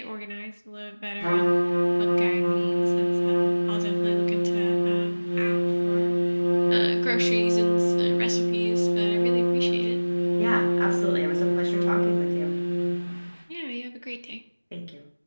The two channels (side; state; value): both; inverted; correlation -1.00